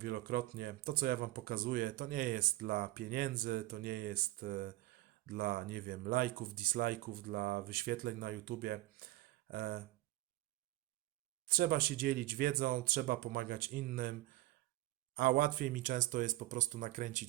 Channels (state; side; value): quieter; left; 17.2 dB